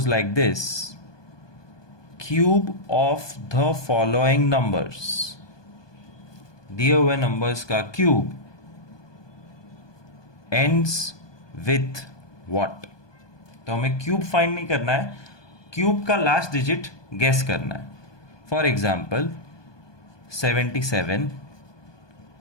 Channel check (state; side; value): late; right; 1.2 ms